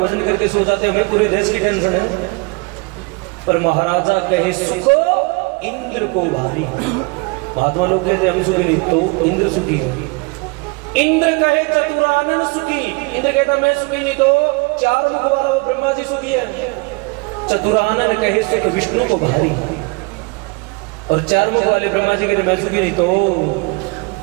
करके सो जाते हैं, हमें पूरे देश की टेंशन है। पर महाराजा कहे सुखो इंद्र को भारी, महात्मा लोग कहते हम सुखी नहीं, तो इंद्र सुखी है। इंद्र कहे चतुरानन सुखी, इंद्र कहता मैं सुखी नहीं, तो चार मुख वाला वो ब्रह्मा जी सुखी है। चतुरानन कहे सुख विष्णु को भारी, और चार मुख वाले ब्रह्मा जी कहते मैं सुखी नहीं, तो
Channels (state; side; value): quieter; left; 28.9 dB